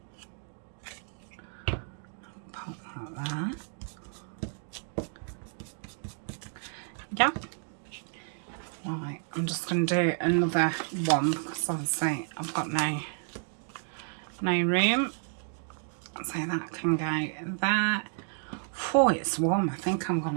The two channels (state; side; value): silent; left; 57 dB below the other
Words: Put that there. Yep. Right, I'm just going to do another one because obviously I've got no room. So that can go there. Oh, it's warm. I think I'm going